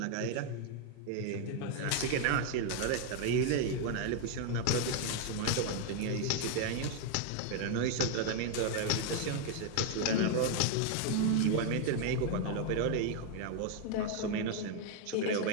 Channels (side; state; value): both; different; correlation 0.00